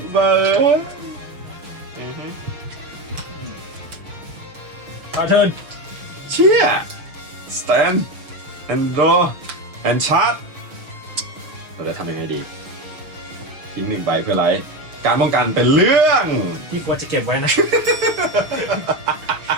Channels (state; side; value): late; left; 6.5 ms